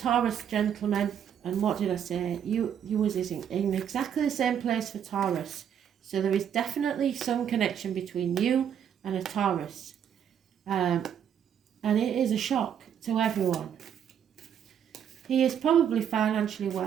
gentleman, and what did I say? You was in exactly the same place for Taurus. So there is definitely some connection between you and a Taurus. And it is a shock to everyone. He is probably financially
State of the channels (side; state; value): left; quieter; 8.8 dB